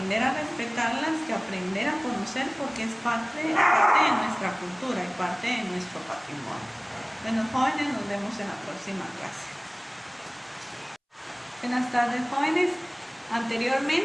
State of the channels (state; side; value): identical; both; correlation 1.00